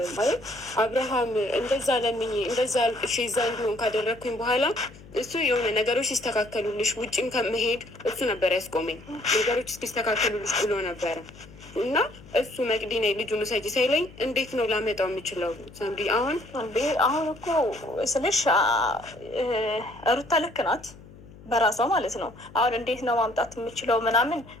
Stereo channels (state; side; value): noise; left; hum, 20 dB below the sound